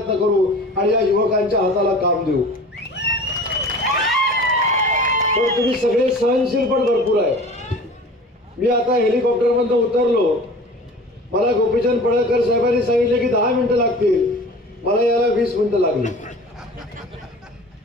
करू आणि या युवकांच्या हाताला काम देऊ. पण तुम्ही सगळे सहनशील पण भरपूर आहे. मी आता हेलिकॉप्टरमधून उतरलो, मला गोपीचंद पडळकर साहेबांनी सांगितले की 10 मिनिटं लागतील, मला यायला 20 मिनिटं लागली.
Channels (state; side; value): normal; both; correlation 0.41